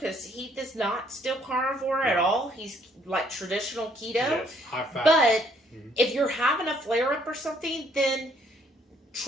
Heath is not still carnivore at all. He's like traditional keto. Yes, high fat. But if you're having a flare-up or something, then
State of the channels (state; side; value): normal; both; correlation 0.66